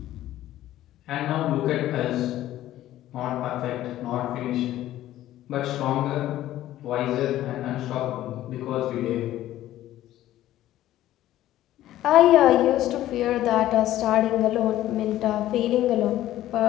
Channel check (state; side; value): quieter; right; 13.8 dB